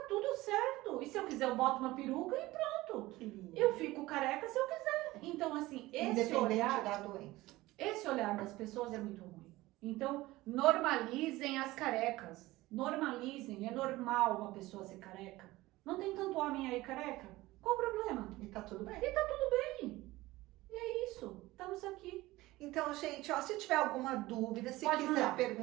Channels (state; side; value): quieter; left; 18.6 dB